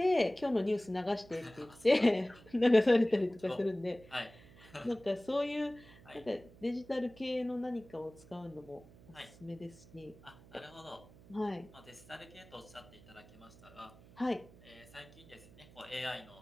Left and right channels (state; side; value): noise; right; hum, 22 dB below the sound